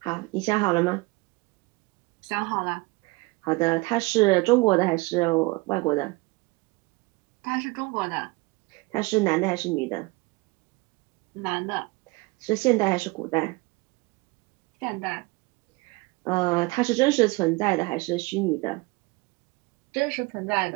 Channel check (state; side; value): quieter; left; 24.4 dB